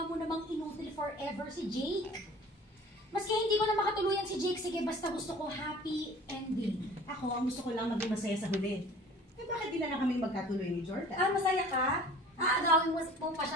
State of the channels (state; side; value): normal; both; correlation 0.46